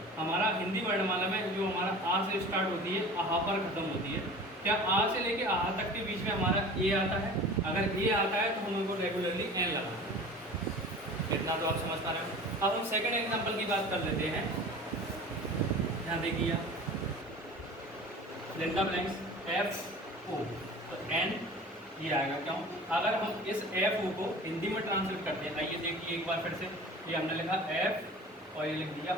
हमारा हिंदी वर्णमाला में जो हमारा आ से स्टार्ट होती है, आहा पर खत्म होती है। क्या आ से लेके आहा तक के बीच में हमारा ए आता है? अगर ए आता है तो हम उनको रेगुलरली एन लगाएंगे। इतना तो आप समझ पा रहे हो। अब हम सेकंड एग्जांपल की बात कर लेते हैं। यहाँ देखिए लेंटा ब्लैंक्स एफ ओ, तो एन ये आएगा। क्यों? अगर हम इस एफ ओ को हिंदी में ट्रांसलेट करते हैं, आइए देखिए एक बार फिर से। ये हमने लिखा एफ और ये लिख दिया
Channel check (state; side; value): normal; both; correlation 0.40